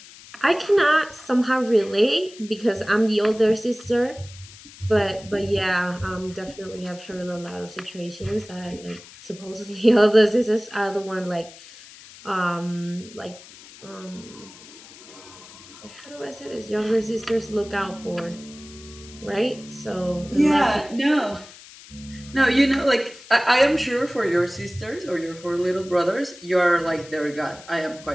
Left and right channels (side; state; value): left; noise; hiss, 19 dB below the sound